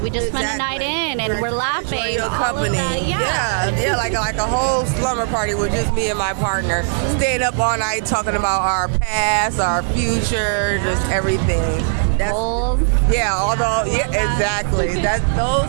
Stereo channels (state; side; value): silent; left; digital silence